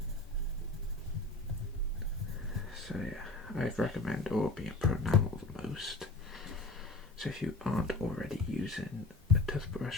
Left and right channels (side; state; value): right; quieter; 3.0 dB